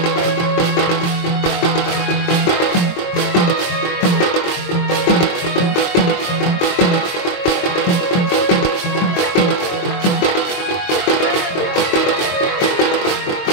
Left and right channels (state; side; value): late; right; 23 ms